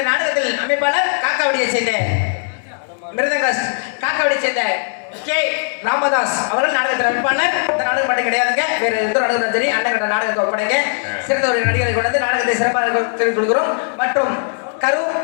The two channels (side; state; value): right; silent; 67 dB below the other